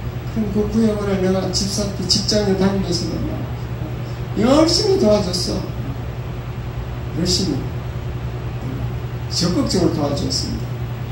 그럼 그 구역원을 내가 집사 때 직장에 다니면서도 열심히 도와줬어. 열심히 적극적으로 도와줬습니다.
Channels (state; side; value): identical; both; correlation 1.00